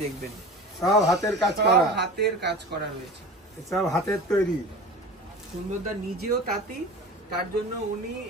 দেখবেন। সব হাতের কাজ করা, হাতের কাজ করা রয়েছে, সব হাতের তৈরি। সুন্দরদা নিজেও তাঁতি, তার জন্য উনি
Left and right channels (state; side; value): normal; both; correlation 0.35